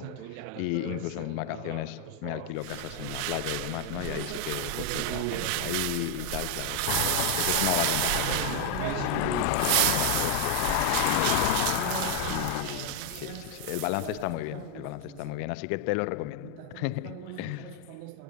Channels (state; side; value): different; both; correlation 0.00